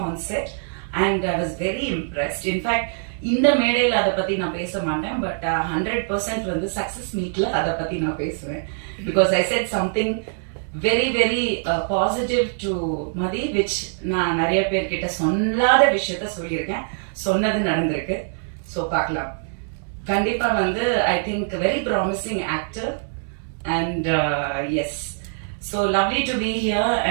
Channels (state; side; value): silent; left; 63 dB below the other